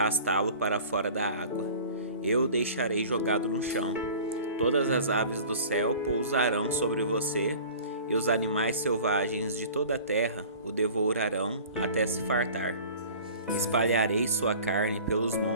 para fora da água. Eu o deixarei jogado no chão. Todas as aves do céu pousarão sobre você, e os animais selvagens de toda a terra o devorarão até se fartar. Espalharei sua carne pelos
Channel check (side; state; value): both; inverted; correlation -0.43